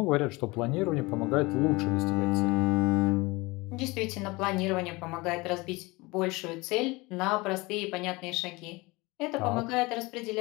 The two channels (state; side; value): quieter; right; 23.6 dB